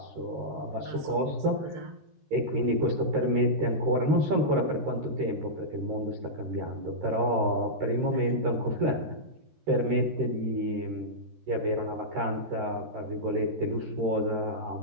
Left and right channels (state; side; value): late; left; 13 ms